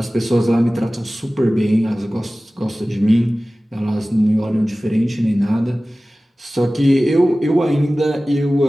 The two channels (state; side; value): normal; both; correlation 0.97